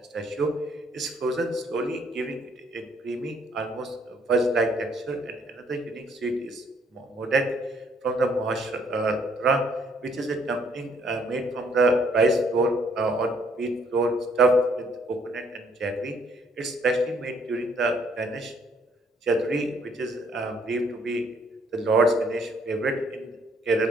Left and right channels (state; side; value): normal; both; correlation 0.66